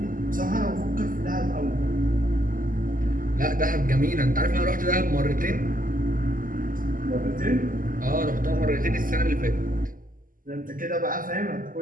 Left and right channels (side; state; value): left; late; 0.41 ms